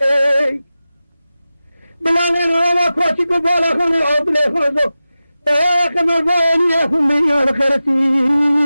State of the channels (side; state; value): both; inverted; correlation -0.95